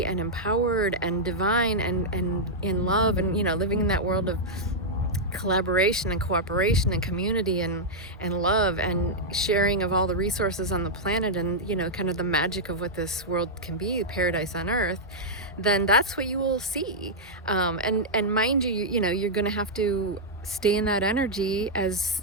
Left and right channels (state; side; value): normal; both; correlation -0.06